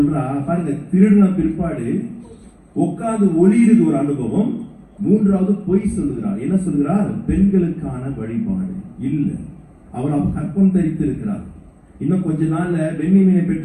பாருங்க, திருடின பிற்பாடு உட்கார்ந்து ஒளியிறது ஒரு அனுபவம். மூன்றாவது பொய் சொல்லுகிறார். என்ன சொல்கிறார்? பெண்களுக்கான வழிபாடு இல்ல, அவர் கற்பம் தரித்து இருக்கிறார். இன்னும் கொஞ்ச நாள்ல பென்யமீனை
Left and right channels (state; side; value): identical; both; correlation 1.00